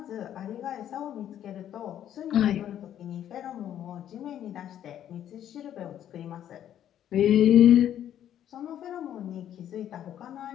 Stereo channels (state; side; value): quieter; right; 10.7 dB